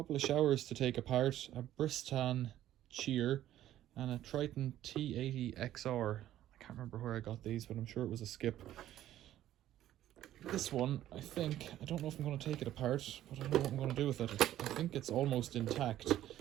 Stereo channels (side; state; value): left; quieter; 12.8 dB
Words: of showers to take apart. A Bristan Cheer and a Triton T80XR. I can't remember where I got these, but I'm sure it was a skip. This one, I don't know if I'm going to take it apart, but I don't know what I'm going to do with it. I think it's almost intact.